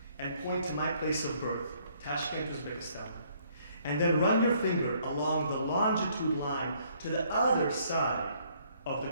and point to my place of birth, Tashkent, Uzbekistan, and then run your finger along the longitude line to the other side of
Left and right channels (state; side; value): inverted; both; correlation -0.65